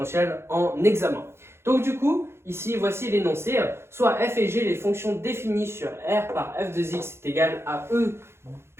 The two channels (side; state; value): left; late; 0.12 ms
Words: en examen. Donc du coup, ici voici l'énoncé, soit f et g, les fonctions définies sur r par f de x est égal à e